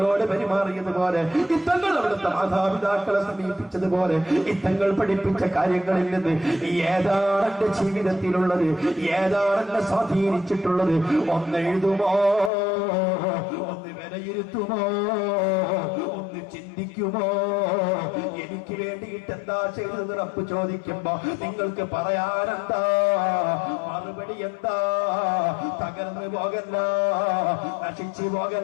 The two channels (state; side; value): drops out; right; at 12.5 s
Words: പെരുമാറിയതുപോലെ, ഈ തങ്ങൾ അവിടുത്തെ മാതാപിതാക്കളെ സമീപിച്ചതുപോലെ, ഈ തങ്ങൾ പഠിപ്പിച്ച കാര്യങ്ങളിൽ നിന്ന് ഏതാണ് എന്റെ ജീവിതത്തിലുള്ളത്? ഏതാണ് എന്നെ സ്വാധീനിച്ചിട്ടുള്ളത്? ഒന്ന് എഴുതുമോ? ഒന്ന് വിലയിരുത്തുമോ? ഒന്ന് ചിന്തിക്കുമോ? എനിക്ക് വേണ്ടിയിട്ട് എന്താ ചെയ്തത് റബ്ബ് ചോദിക്കുമ്പോ നിങ്ങൾക്ക് പറയാനെന്താ? മറുപടി എന്താ? തകർന്നു പോകല്ല, നശിച്ചു